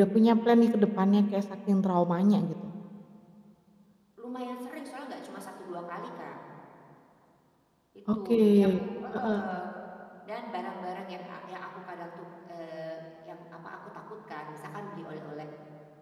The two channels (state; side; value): identical; both; correlation 1.00